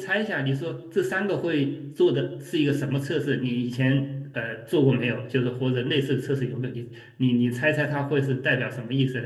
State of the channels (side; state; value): both; identical; correlation 1.00